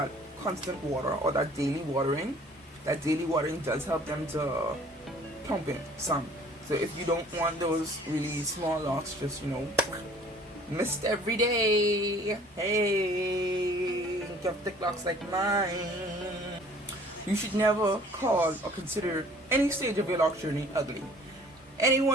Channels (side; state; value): both; normal; correlation 0.52